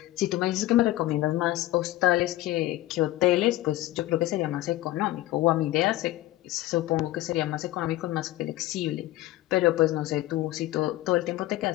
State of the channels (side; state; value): right; quieter; 16.4 dB